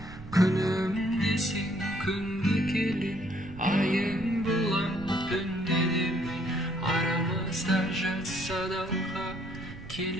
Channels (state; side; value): noise; right; rumble, 14 dB below the sound